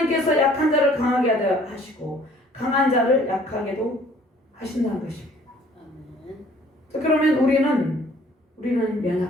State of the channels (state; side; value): normal; both; correlation 0.56